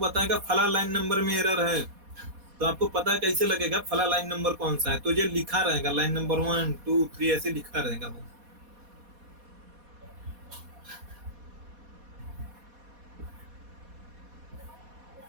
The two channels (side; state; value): left; late; 4.2 ms